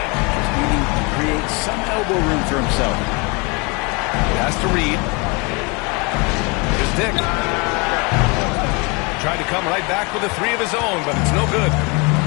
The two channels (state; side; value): quieter; right; 29.6 dB